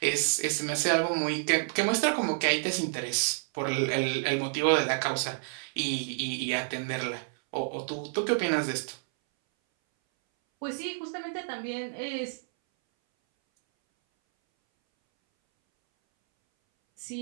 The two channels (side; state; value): left; silent; 58 dB below the other